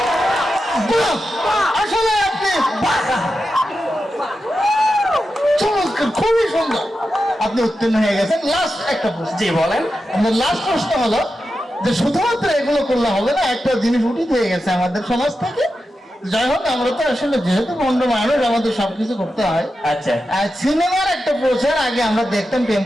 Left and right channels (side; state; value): both; normal; correlation 0.90